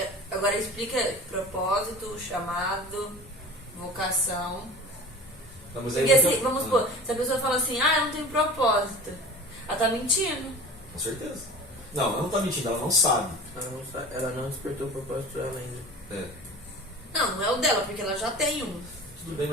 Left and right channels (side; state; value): both; normal; correlation 0.38